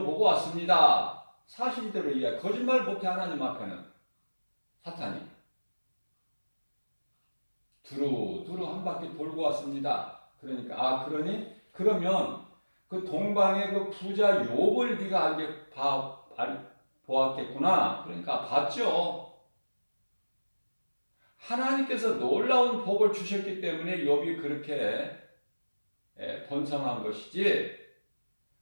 왔습니다. 사실대로 이야기, 거짓말 못해 하나님 앞에는 사탄이 두루두루 한 바퀴 돌고 왔습니다. 그러니까 그러면 그 동방의 그 부자 욥을 네가 보았겠구나. 그러니까 봤죠. 하나님께서 놀라운 복을 주셨기 때문에 욥이 그렇게 번성한 것이지.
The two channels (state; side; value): inverted; both; correlation -1.00